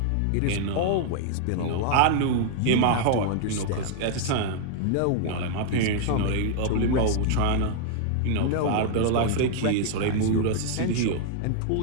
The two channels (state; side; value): different; both; correlation -0.01